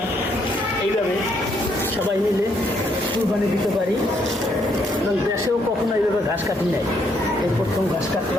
এইভাবে সবাই মিলে কুরবানি দিতে পারি, এবং দেশেও কখনো এইভাবে ঘাস কাটি নাই, এই প্রথম ঘাস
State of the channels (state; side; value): normal; both; correlation 0.72